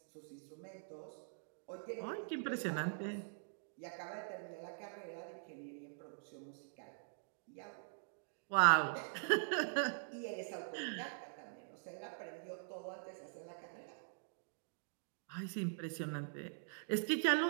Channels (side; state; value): left; silent; digital silence